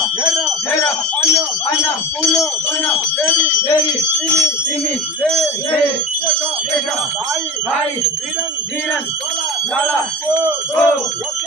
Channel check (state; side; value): normal; both; correlation 0.31